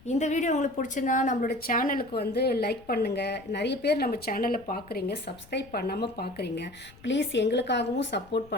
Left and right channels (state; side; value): noise; left; rumble, 24 dB below the sound